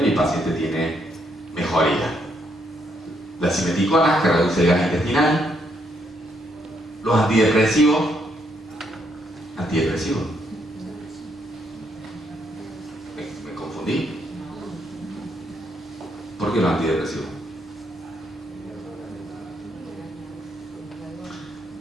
y el paciente tiene mejoría. Las simeticonas, que reduce el gas intestinal. Los antidepresivos. Me confundí. ¿Por qué los antidepresivos?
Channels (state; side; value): normal; both; correlation 0.74